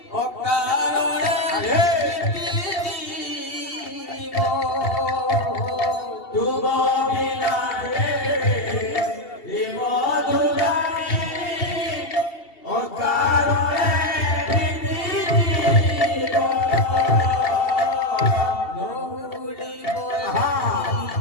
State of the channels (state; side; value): late; right; 2.7 ms